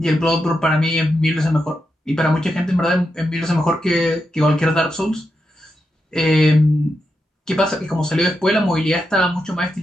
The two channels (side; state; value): both; normal; correlation 0.86